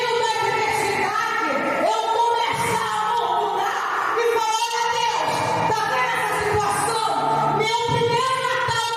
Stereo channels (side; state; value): both; identical; correlation 1.00